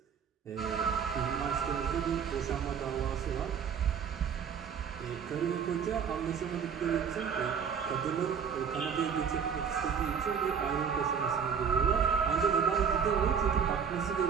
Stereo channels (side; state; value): left; quieter; 7.0 dB